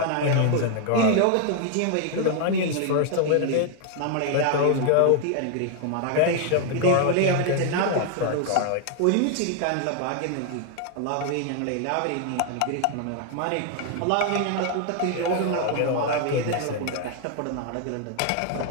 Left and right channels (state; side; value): different; both; correlation 0.00